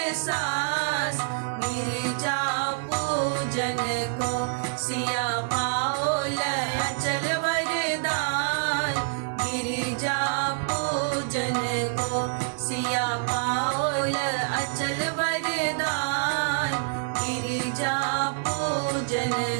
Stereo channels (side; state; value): left; silent; 60 dB below the other